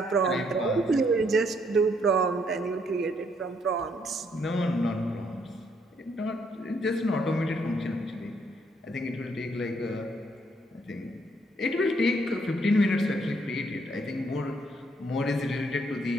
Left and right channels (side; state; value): both; normal; correlation 0.71